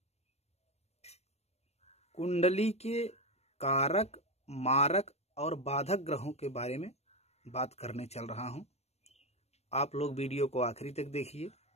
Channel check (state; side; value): late; right; 0.31 ms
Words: कुंडली के कारक, मारक और बाधक ग्रहों के बारे में बात करने चल रहा हूं। आप लोग वीडियो को आखिरी तक देखिए,